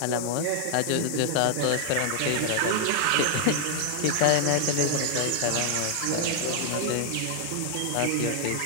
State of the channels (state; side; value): different; both; correlation 0.00